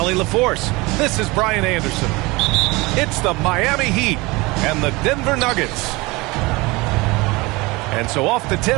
LaForce, this is Brian Anderson. It's the Miami Heat and the Denver Nuggets. And so off the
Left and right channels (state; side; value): quieter; left; 23.4 dB